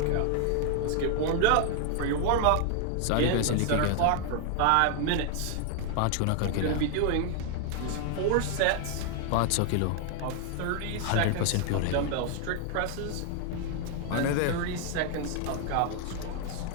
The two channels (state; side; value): different; both; correlation 0.00